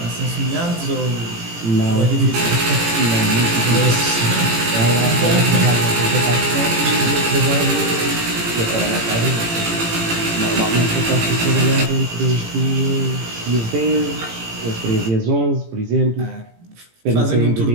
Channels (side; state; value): left; late; 18 ms